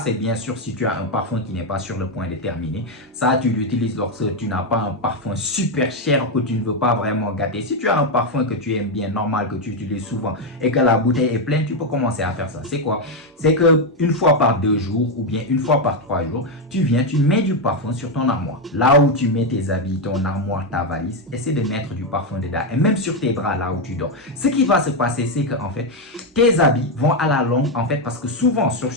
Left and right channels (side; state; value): both; normal; correlation 0.05